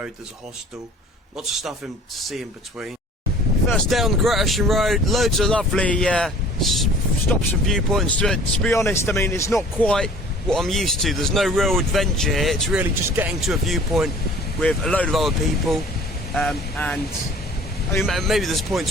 there's a hostel. Lots of stuff to see in between. First day on the Great Ocean Road, loads of lovely stops and viewpoints to it. To be honest, I mean, it's not quite what I'm used to. There's no real adventure here. It's really just getting to a viewpoint with a load of other people. And I mean, maybe there's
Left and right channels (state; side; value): normal; both; correlation 0.48